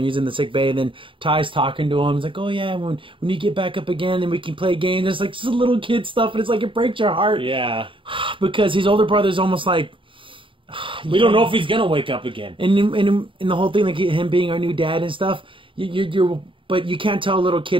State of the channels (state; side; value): late; left; 0.25 ms